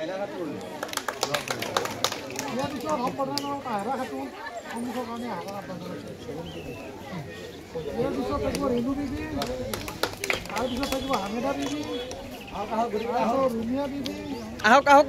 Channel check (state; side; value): identical; both; correlation 1.00